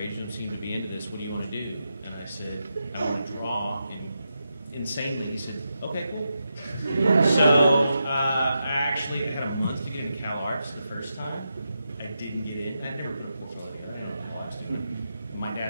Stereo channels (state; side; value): inverted; both; correlation -0.86